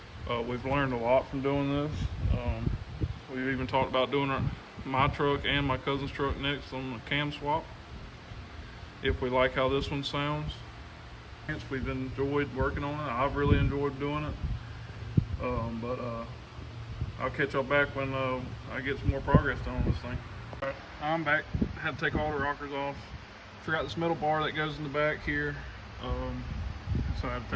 We've learned a lot from doing this. We've even talked about doing my truck and my cousin's truck next on the cam swap, if we like how this one sounds. We've enjoyed working on it. I've really enjoyed doing it. But I'll catch y'all back when I get some more progress done on this thing. All right, I'm back. Had to take all the rockers off. Forgot this metal bar that goes in the back here. So I had to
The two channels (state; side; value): identical; both; correlation 1.00